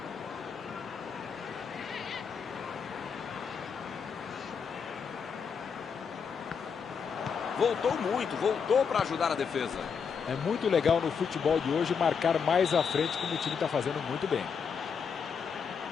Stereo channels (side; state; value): right; quieter; 6.4 dB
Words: Voltou muito, voltou para ajudar a defesa. É muito legal no futebol de hoje marcar mais à frente, como o time está fazendo muito bem.